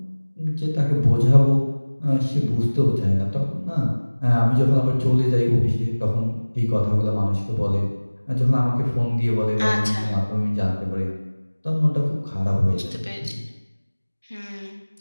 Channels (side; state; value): both; inverted; correlation -1.00